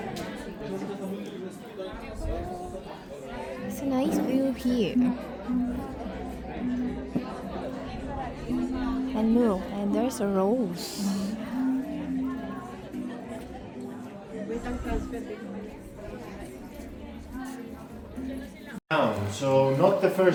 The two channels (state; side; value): identical; both; correlation 1.00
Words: It's a nice view here. And look, and there's a rose. So not the